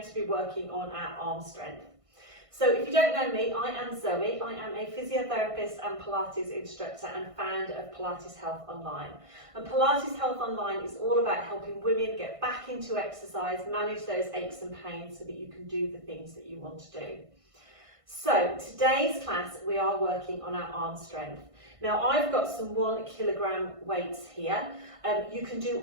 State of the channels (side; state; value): left; late; 1.5 ms